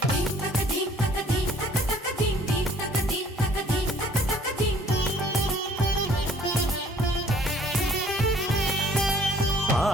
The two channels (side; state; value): both; normal; correlation 0.57